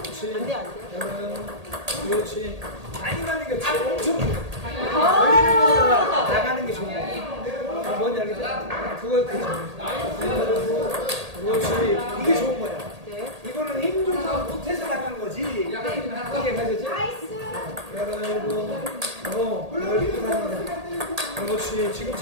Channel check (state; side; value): late; left; 1.8 ms